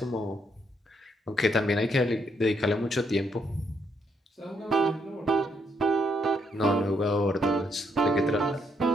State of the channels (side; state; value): both; normal; correlation 0.75